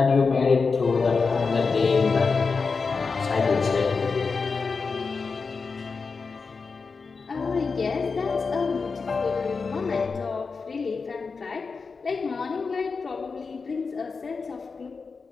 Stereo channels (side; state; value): right; quieter; 4.7 dB